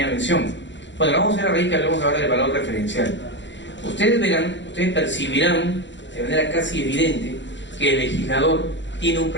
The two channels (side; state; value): right; late; 0.53 ms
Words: mención. Bueno, vamos a ir a raíz que hablemos ahora del valor referencial. Ustedes percibirán de manera casi evidente que el legislador tiene un